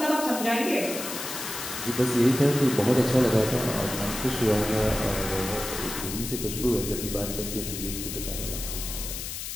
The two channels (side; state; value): left; noise; hiss, 6 dB below the sound